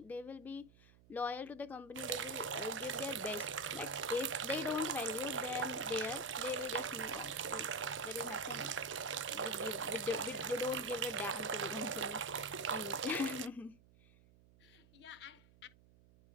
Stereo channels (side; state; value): right; noise; hum, 26 dB below the sound